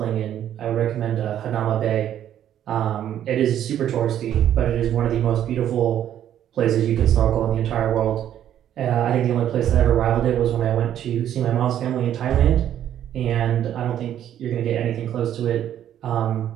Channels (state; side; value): quieter; left; 10.7 dB